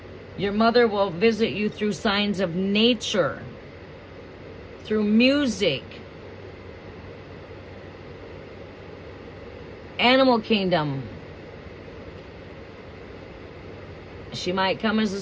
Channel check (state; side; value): identical; both; correlation 1.00